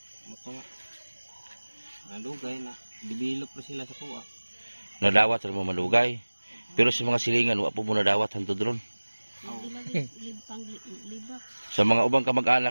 Mutunga. Nadugay na develop po sila sa kuha. Nadawat ra mo malugay. Pero sa mga silingan wa po mo nadawat hantod ron. libang libak. Sa mga ubang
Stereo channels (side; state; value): both; inverted; correlation -1.00